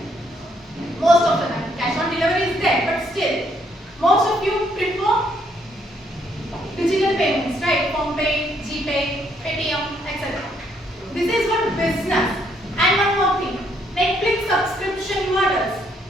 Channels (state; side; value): normal; both; correlation 0.70